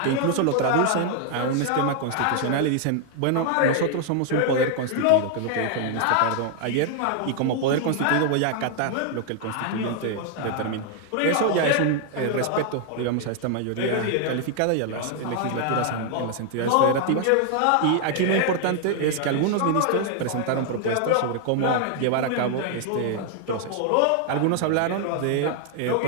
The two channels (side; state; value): both; different; correlation 0.00